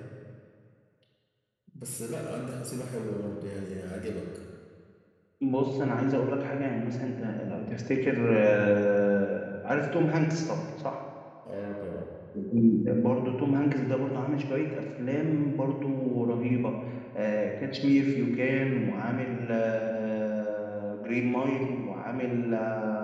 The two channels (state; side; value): identical; both; correlation 1.00